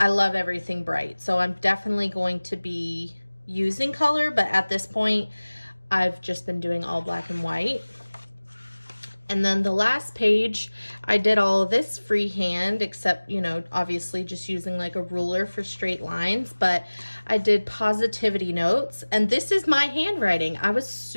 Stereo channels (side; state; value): both; inverted; correlation -1.00